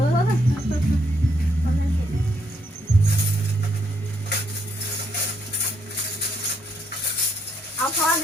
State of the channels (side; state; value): both; normal; correlation 0.74